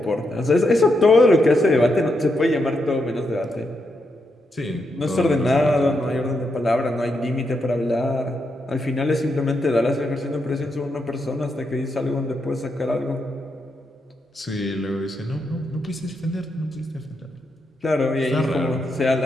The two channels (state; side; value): normal; both; correlation 0.82